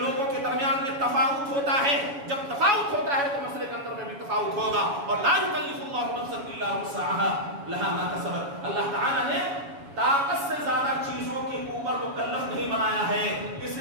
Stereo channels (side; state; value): left; late; 7.1 ms